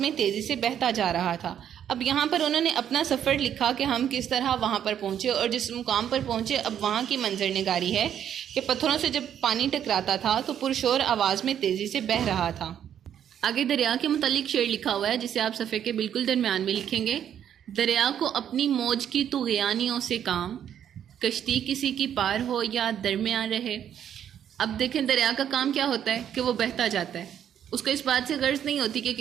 تیزی سے بہتا جا رہا تھا۔ اب یہاں پر انہوں نے اپنا سفر لکھا کہ ہم کس طرح وہاں پر پہنچے اور جس مقام پر پہنچے اب وہاں کی منظر نگاری ہے کہ پتھروں سے جب پانی ٹکراتا تھا تو پرشور آواز میں تیزی سے بہہ رہا تھا۔ آگے دریا کے متعلق شعر لکھا ہوا ہے جسے آپ صفحے کے بالکل درمیان میں لکھیں گے۔ دریا کو اپنی موج کی طغیانیوں سے کام، کشتی کسی کی پار ہو یا درمیان رہے۔ اب دیکھیں دریا کا کام کیا ہوتا ہے کہ وہ بہتا جاتا ہے، اس کو اس بات سے غرض نہیں ہوتی کہ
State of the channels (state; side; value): quieter; left; 9.6 dB